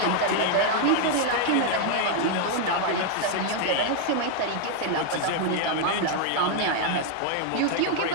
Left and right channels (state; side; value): different; both; correlation 0.00